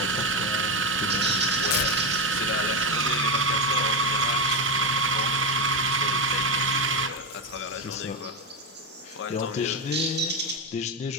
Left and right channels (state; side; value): normal; both; correlation 0.11